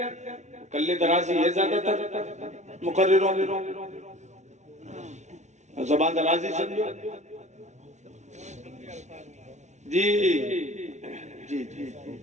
کلے درازی ہے زیادہ تر مقرروں میں، زبان درازی سمجھو. جی جی جی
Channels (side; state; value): left; late; 0.33 ms